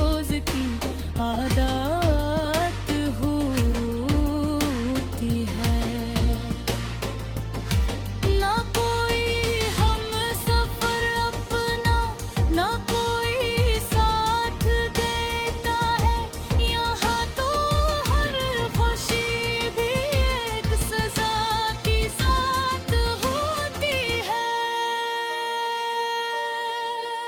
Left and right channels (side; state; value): both; identical; correlation 1.00